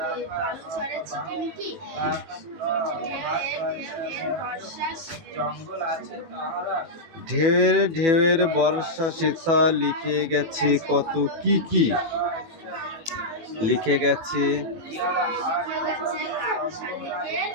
ঢেউয়ের ঢেউয়ের বর্ষা সেথা লিখে গেছে কত কি কি লিখে গেছে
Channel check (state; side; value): late; left; 18 ms